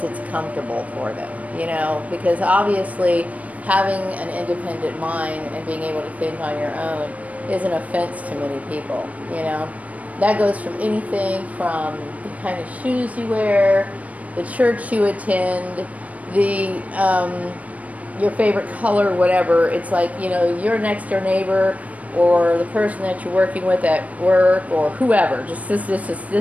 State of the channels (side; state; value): left; late; 0.068 ms